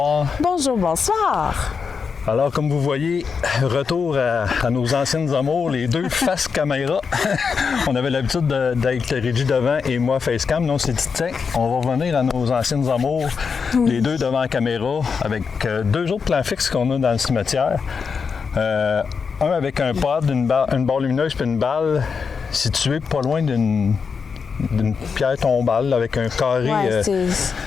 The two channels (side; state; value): right; quieter; 5.7 dB